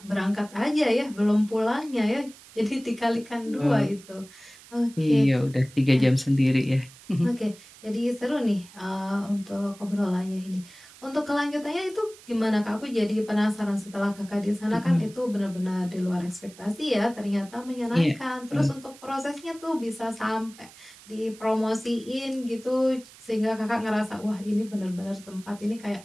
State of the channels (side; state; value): right; noise; hiss, 21 dB below the sound